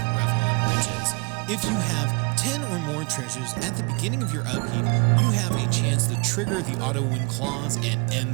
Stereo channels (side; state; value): left; quieter; 32.2 dB